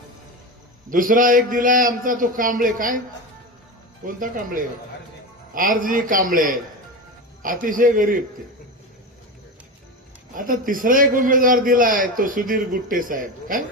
दुसरा एक दिलाय आमचा तो कांबळे, काय कोणता कांबळे? आरजी कांबळे, अतिशय गरीब ते। आता तिसरा एक उमेदवार दिलाय तो सुधीर गुट्टे साहेब, काय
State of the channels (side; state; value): both; normal; correlation 0.21